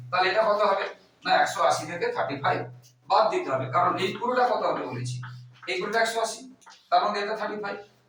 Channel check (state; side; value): identical; both; correlation 1.00